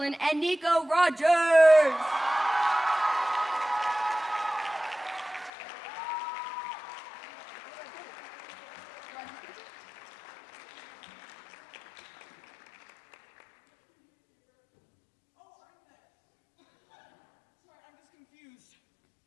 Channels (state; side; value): drops out; right; at 5.5 s